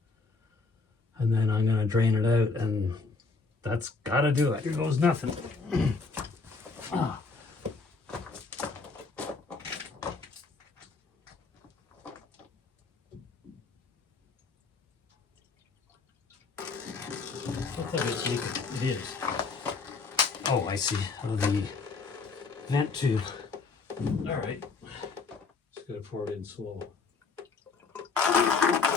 and then I'm gonna drain it out, and that's gotta do it. Here goes nothing. Ah. It is. Oh, I see. Oh, the vent tube. All right. Just gotta pour it in slow.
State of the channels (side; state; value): right; quieter; 4.4 dB